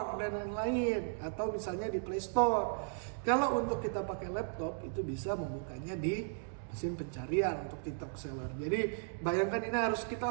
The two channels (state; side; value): silent; left; digital silence